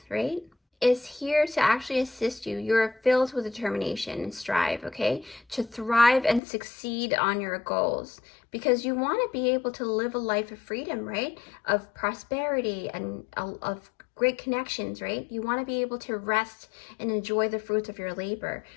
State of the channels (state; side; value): drops out; right; at 6.4 s